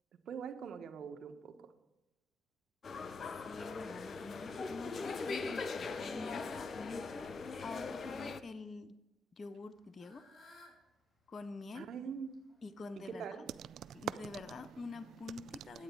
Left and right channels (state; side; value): normal; both; correlation 0.80